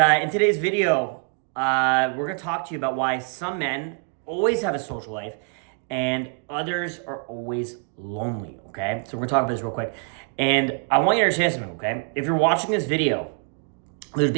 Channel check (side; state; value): left; quieter; 39.6 dB